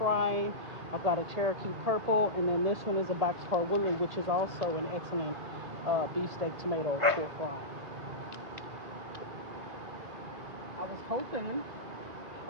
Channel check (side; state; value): left; late; 2.0 ms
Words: I've got a Cherokee purple, and then this one is a boxcar woolly, which is also an excellent beefsteak tomato for frying. I was hoping,